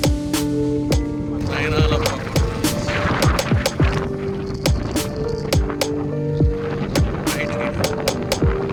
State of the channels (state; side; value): identical; both; correlation 1.00